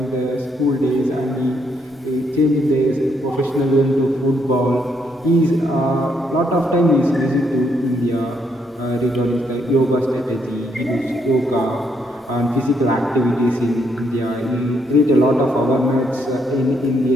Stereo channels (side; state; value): both; normal; correlation 0.74